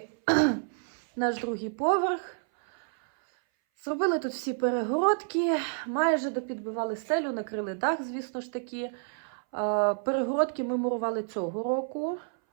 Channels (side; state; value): left; silent; 58 dB below the other